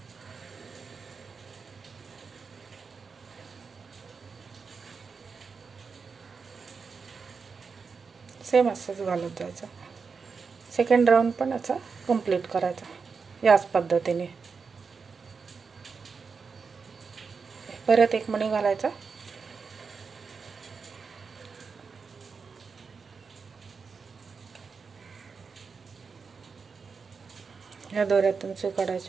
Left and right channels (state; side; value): quieter; left; 5.2 dB